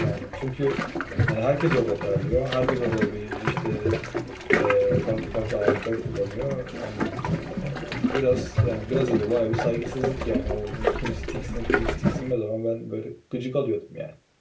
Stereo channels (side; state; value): both; identical; correlation 1.00